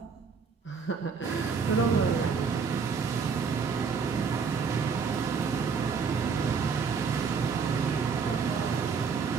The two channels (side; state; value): left; quieter; 5.7 dB